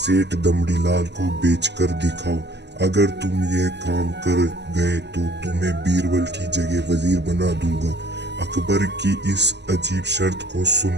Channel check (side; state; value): left; late; 0.50 ms